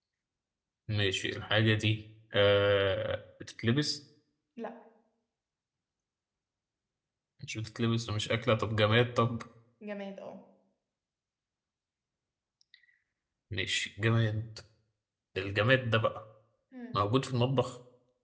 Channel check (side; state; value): both; identical; correlation 1.00